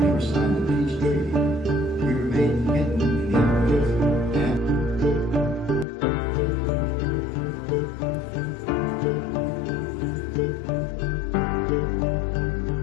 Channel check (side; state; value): right; drops out; at 5.9 s